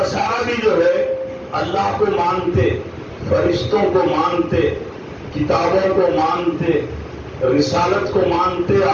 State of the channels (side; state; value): both; identical; correlation 1.00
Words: بھی جو ہے اللہ کو مانتے, فرشتوں کو مانتے, کتابوں کو مانتے, رسالت کو مانتے,